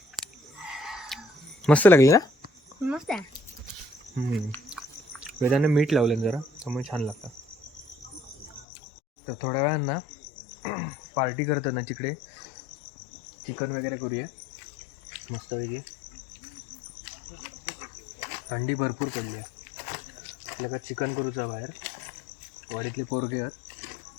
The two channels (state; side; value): drops out; right; at 8.7 s